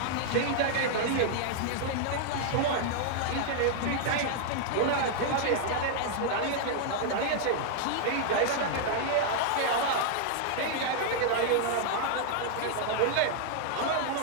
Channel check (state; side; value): different; both; correlation -0.01